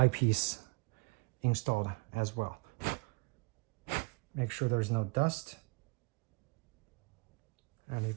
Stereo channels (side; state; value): left; quieter; 29.4 dB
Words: installed as well. Make sure there's no dust. And